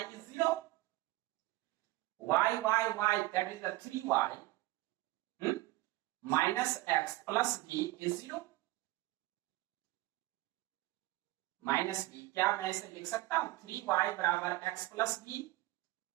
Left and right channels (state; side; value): quieter; left; 19.2 dB